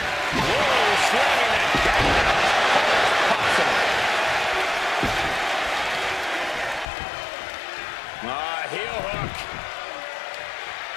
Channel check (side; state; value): right; drops out; at 6.9 s